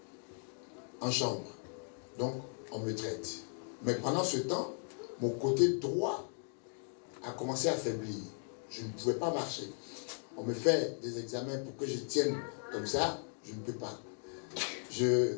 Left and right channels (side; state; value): right; silent; 53 dB below the other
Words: en chambre. Donc on me traite. Mais pendant ce temps, mon côté droit a commencé à faiblir. Je ne pouvais pas marcher. On me fait des examens pour que je tienne comme ça, je ne peux pas.